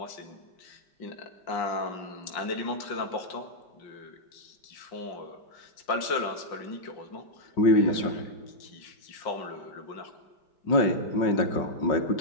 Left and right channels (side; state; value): right; late; 5.6 ms